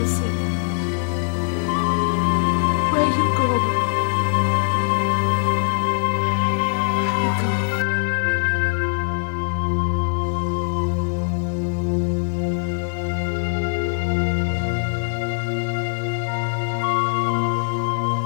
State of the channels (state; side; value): silent; right; digital silence